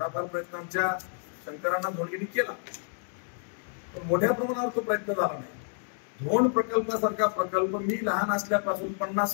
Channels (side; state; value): right; silent; 58 dB below the other